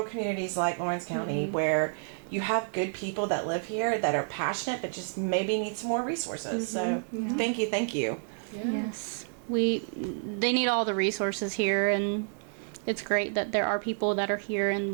communities like Lawrence County, where you have good people that live here that are passionate but just maybe need some more resources. So thank you. Yes. They need all the resources here, and it's great that there are people that are here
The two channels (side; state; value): left; silent; digital silence